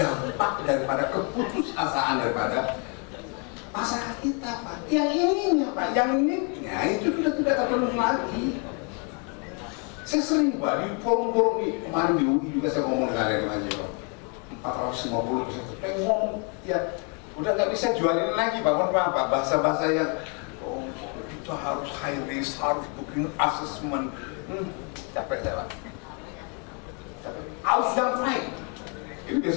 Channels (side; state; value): right; quieter; 36.8 dB